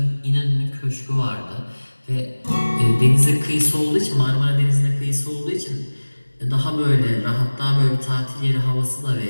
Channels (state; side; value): inverted; both; correlation -1.00